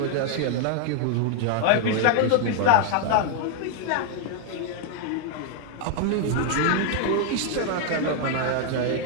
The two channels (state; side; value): different; both; correlation 0.00